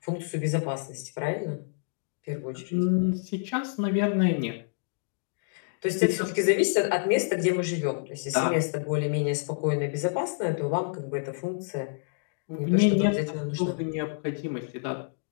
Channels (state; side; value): silent; right; digital silence